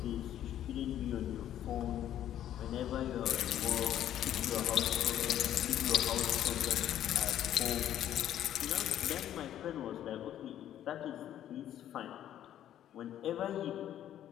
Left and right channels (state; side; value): quieter; right; 11.3 dB